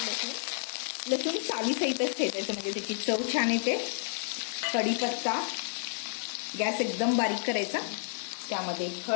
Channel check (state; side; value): silent; right; digital silence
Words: लसूण चावीसहितच ठेचायचं म्हणजे त्याची चव छान येते। कढीपत्ता, गॅस एकदम बारीक करायचा। त्यामध्ये